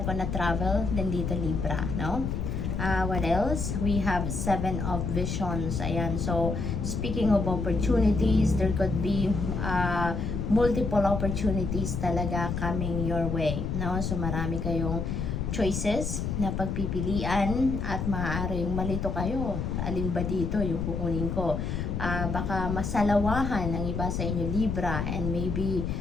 on a travel din dito, Libra, no? What else? We have Seven of Visions. Ayan. So, speaking of opportunities, there could be multiple opportunities talaga coming your way. No? So, marami kayong choices na pagpipilian at maaaring malito kayo. Alin ba dito yung kukunin ko? Baka masalawahan ang iba sa inyo, Libra, and maybe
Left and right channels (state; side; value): noise; left; rumble, 2 dB below the sound